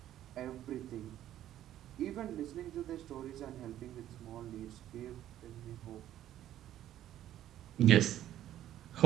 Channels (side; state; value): left; quieter; 12.3 dB